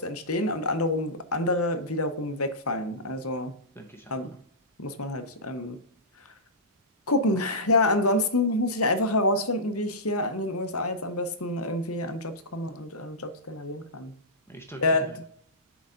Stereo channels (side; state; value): both; normal; correlation -0.16